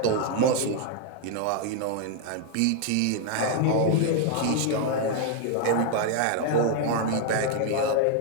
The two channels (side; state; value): both; different; correlation 0.00